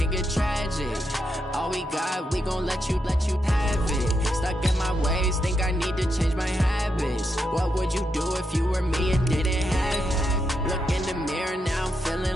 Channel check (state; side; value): normal; both; correlation 0.83